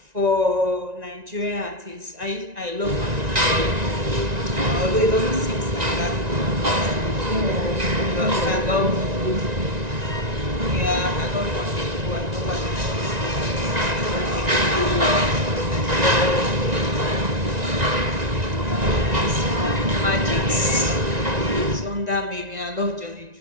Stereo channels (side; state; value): left; late; 1.9 ms